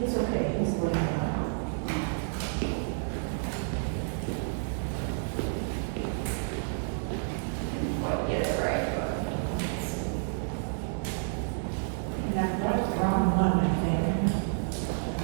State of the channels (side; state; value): left; silent; digital silence